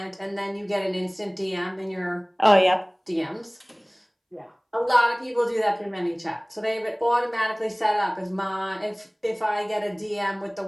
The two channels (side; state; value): both; identical; correlation 1.00